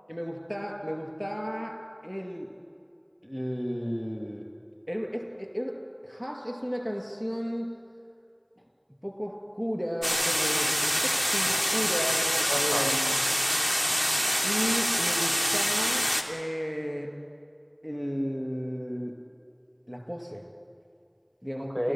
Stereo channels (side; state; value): both; identical; correlation 1.00